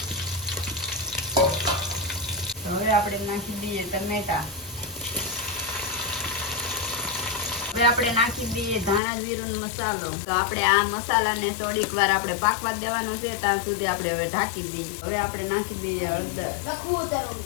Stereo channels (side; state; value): right; drops out; at 9.0 s